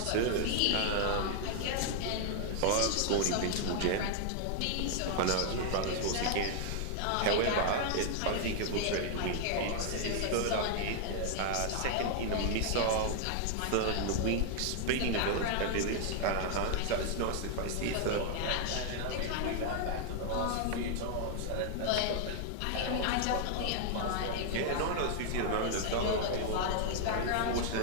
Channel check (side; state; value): both; different; correlation 0.00